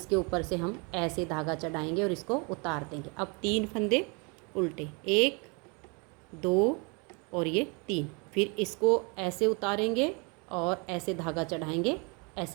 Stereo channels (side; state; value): left; quieter; 32.0 dB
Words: ऊपर से हम ऐसे धागा चढ़ाएंगे और इसको उतार देंगे। अब 3 फंदे उल्टे, 1 2 और ये 3। फिर इसको ऐसे उतारेंगे और ऐसे धागा चढ़ाएंगे,